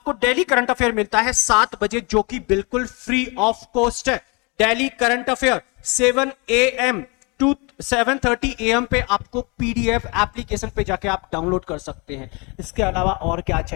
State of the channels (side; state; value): right; quieter; 30.2 dB